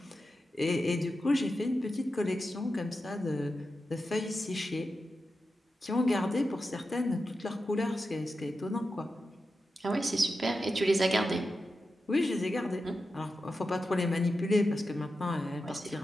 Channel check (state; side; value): normal; both; correlation 0.90